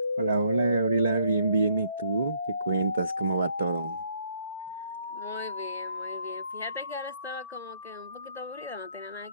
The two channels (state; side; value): inverted; both; correlation -0.67